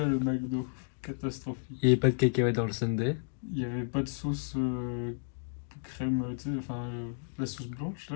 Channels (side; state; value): right; silent; digital silence